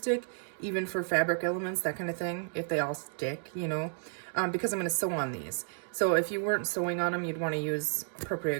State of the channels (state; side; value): silent; left; digital silence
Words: even for fabric elements, that kind of thing, if they all stick, you know, because I'm going to sew on these. So if you weren't sewing on them, you'd want to use